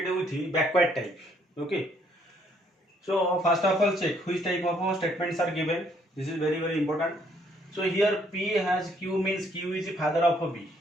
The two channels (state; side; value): normal; both; correlation 0.67